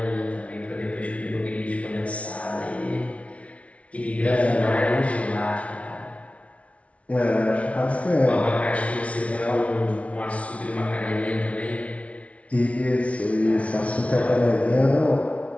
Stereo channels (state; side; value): late; right; 0.064 ms